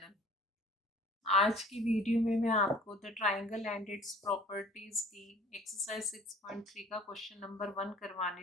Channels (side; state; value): both; normal; correlation 0.50